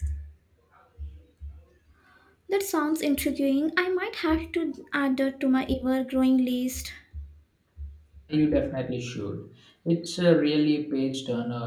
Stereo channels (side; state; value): both; identical; correlation 1.00